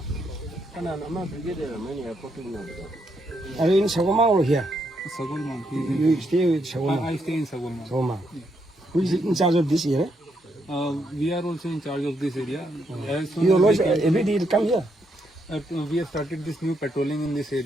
I'm a brigadier. मैंने airport में मिला. Are you in Sagoma or here? Sagulman. He is in. You stay with Sagoma. I stay in Sagulman. Sagoma. Who is in charge of this area? We are also in charge of this area. As soon You as always we can- every day you come here. we have started this new patrolling in this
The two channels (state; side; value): normal; both; correlation 0.77